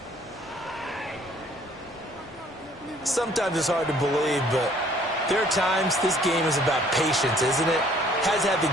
Sometimes it's hard to believe, but there are times this game is about patience, isn't it? Has had the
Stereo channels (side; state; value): both; normal; correlation 0.59